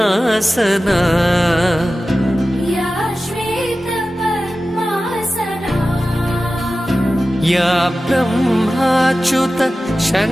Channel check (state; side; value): normal; both; correlation 0.95